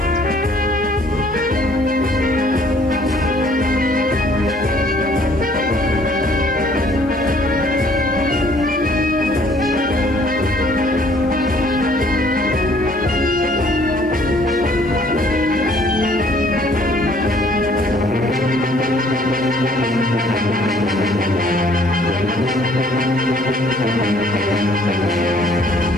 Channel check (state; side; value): normal; both; correlation 0.59